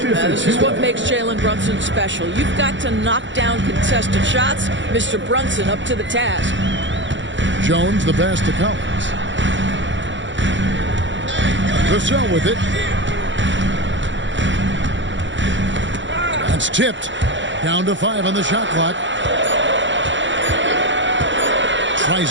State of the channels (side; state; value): left; late; 0.54 ms